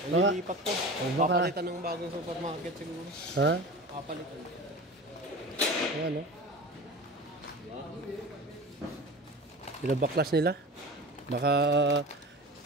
po. baka- Papalitan ng bagong supermarket siguro. Ha? Papalitan. Ano? Binabaklas nila? Baka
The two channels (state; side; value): normal; both; correlation 0.34